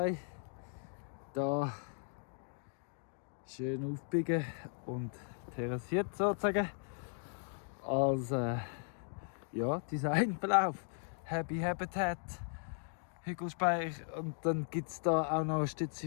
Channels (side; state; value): right; silent; 53 dB below the other